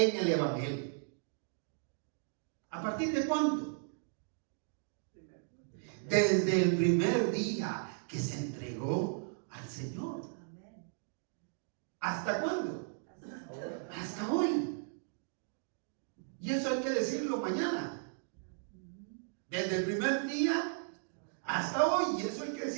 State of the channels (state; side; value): silent; left; digital silence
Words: el Evangelio. ¿A partir de cuándo? Desde el primer día que se entregó al Señor. ¿Hasta cuándo? Hasta hoy. Y eso hay que decirlo mañana. Desde el primer día hasta hoy. Y eso hay que